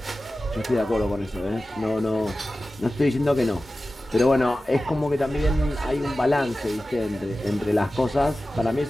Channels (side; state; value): both; normal; correlation 0.95